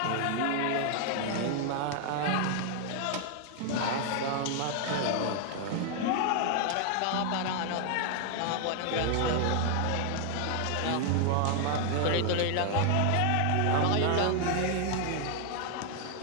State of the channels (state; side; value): different; both; correlation 0.00